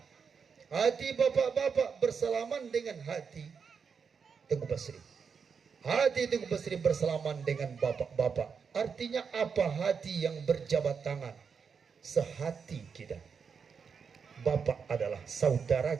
Hati bapak-bapak bersalaman dengan hati Tengku Basri. Hati Tengku Basri bersalaman dengan bapak-bapak. Artinya apa? Hati yang berjabat tangan, sehati kita. Bapak adalah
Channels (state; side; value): quieter; left; 6.1 dB